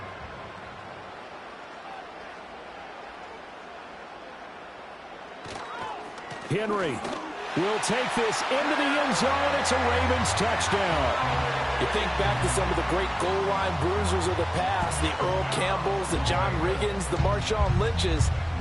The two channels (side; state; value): both; identical; correlation 1.00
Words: Henry will take this into the end zone. It's a Ravens touchdown. You think back to some of the great goal line bruisers of the past, the Earl Campbells, the John Riggins, the Marshawn Lynches.